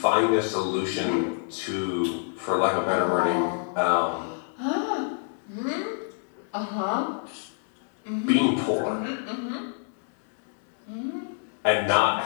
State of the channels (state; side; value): silent; right; 60 dB below the other